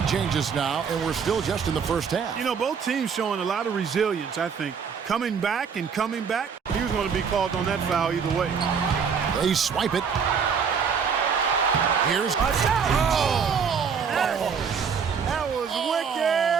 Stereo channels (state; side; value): quieter; left; 6.4 dB